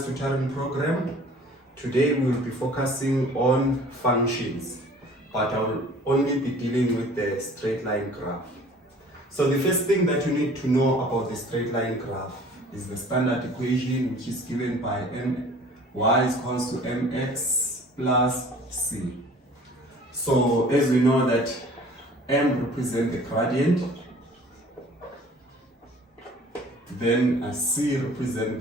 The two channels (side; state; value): both; normal; correlation 0.49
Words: Tutoring Program. Today we will be focusing on functions, but I will only be dealing with the straight line graph. So the first thing that you need to know about the straight line graph is the standard equation, which is given by y is equals to mx plus c. So as we know that m represents the gradient, then c represents